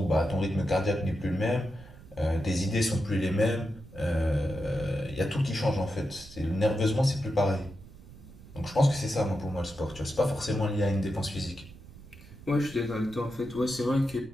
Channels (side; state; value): right; noise; rumble, 19 dB below the sound